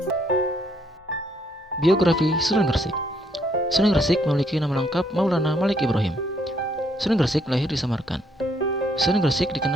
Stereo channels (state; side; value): normal; both; correlation 0.69